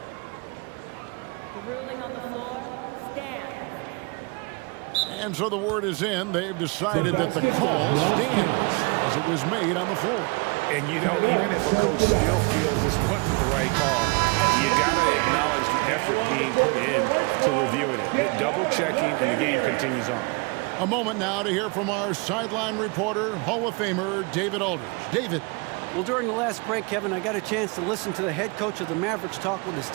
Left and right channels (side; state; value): left; quieter; 29.6 dB